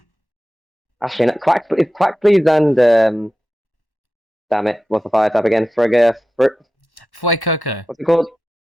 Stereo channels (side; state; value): both; normal; correlation 0.92